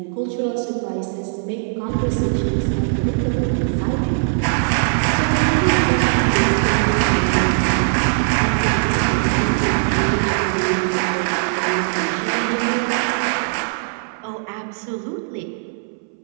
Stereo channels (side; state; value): left; silent; 61 dB below the other